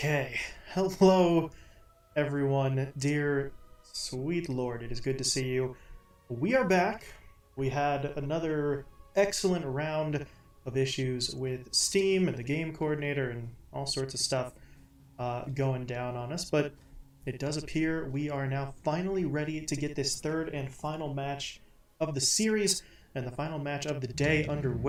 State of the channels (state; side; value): identical; both; correlation 1.00